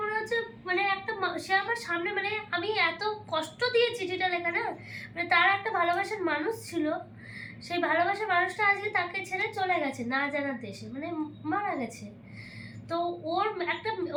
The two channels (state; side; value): identical; both; correlation 1.00